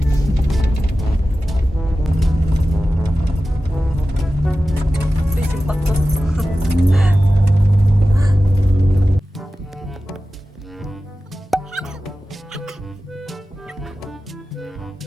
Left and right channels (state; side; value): normal; both; correlation 0.94